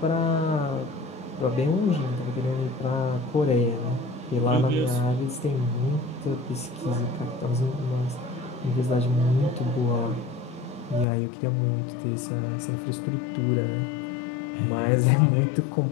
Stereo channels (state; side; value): drops out; right; at 11.1 s